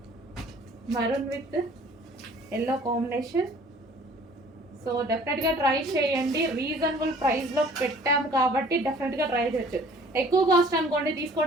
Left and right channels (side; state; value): both; normal; correlation 0.52